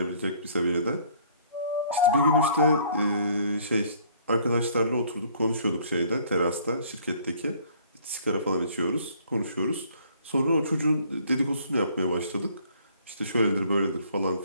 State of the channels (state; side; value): inverted; both; correlation -0.59